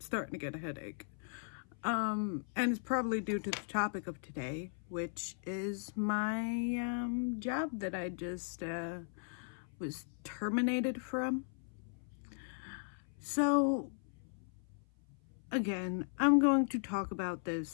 to get a headache. And it's probably due to the topic of today, which is my job that I just was terminated from. So again, I'm going to talk about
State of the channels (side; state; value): right; silent; 53 dB below the other